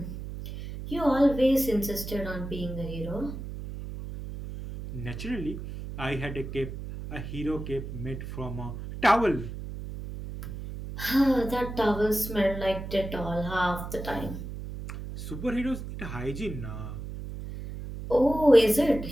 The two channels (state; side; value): noise; right; hum, 8 dB below the sound